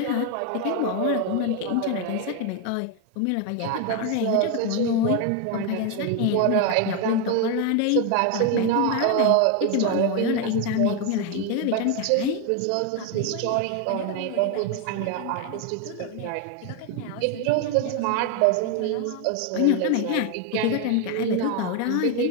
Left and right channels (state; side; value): different; both; correlation 0.01